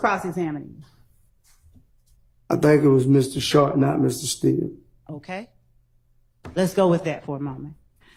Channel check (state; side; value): identical; both; correlation 1.00